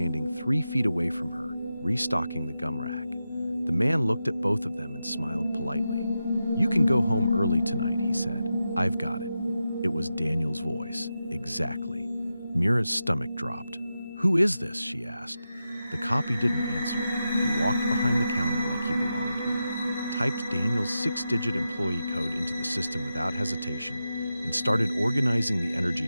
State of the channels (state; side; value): inverted; both; correlation -0.90